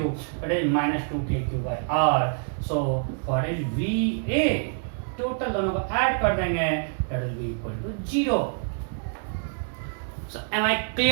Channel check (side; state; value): left; silent; 61 dB below the other